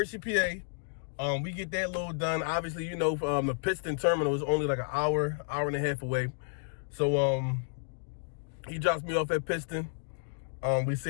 PA. We get that load done. Obviously, the Piston terminal is only like an hour and a half away. So he drops me off at Piston. We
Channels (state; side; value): silent; right; digital silence